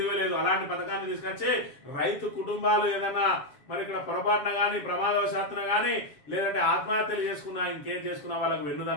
అలాంటి పథకాన్ని తీసుకొచ్చి రైతు కుటుంబాలు ఏదైనా మరి ఇక్కడ పొరపాటున కానీ ప్రమాదవశాత్తున కానీ లేదంటే ఆత్మహత్యలు చేసుకున్నా ఇంకేం చేసుకున్నా వాళ్ళకు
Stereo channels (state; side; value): late; right; 7.3 ms